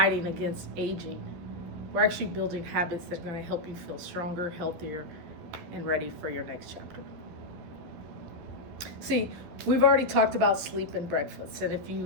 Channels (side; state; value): left; late; 12 ms